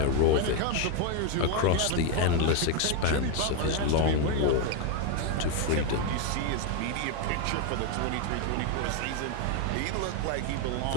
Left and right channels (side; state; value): both; different; correlation 0.02